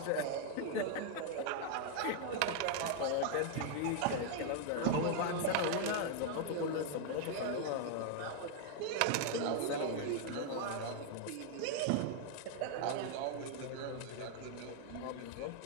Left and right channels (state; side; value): different; both; correlation 0.00